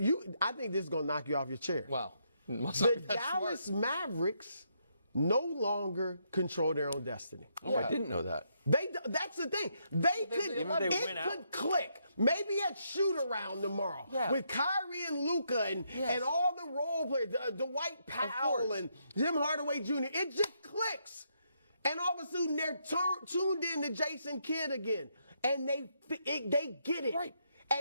think this is going to knock you off your chair. Wow. The Dallas Mavericks no longer control their own destiny. Oh, I didn't know that. That's the thing. It could click. Maybe at shoot around tomorrow with Kyrie and Luka and all the role players, Dwight Powell and Jim Hardaway Jr. It just clicks. And all of a sudden they're tuned in to Jason Kidd again. And they get it. Right.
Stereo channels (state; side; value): inverted; both; correlation -0.76